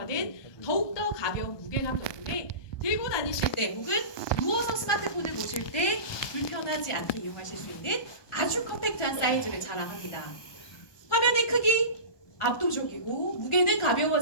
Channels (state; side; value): late; right; 1.2 ms